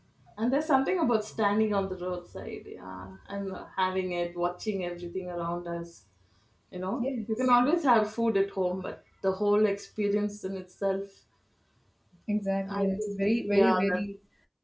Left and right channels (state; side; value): identical; both; correlation 1.00